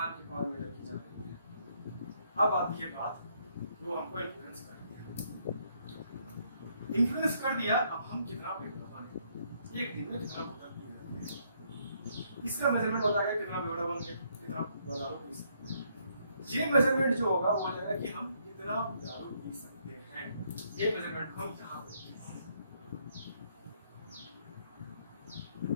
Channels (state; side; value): inverted; both; correlation -0.71